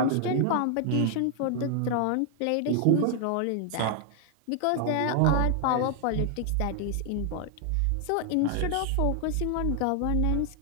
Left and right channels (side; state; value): both; different; correlation 0.00